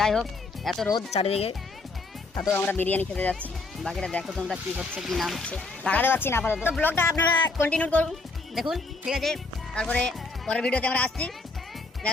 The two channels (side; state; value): right; quieter; 3.5 dB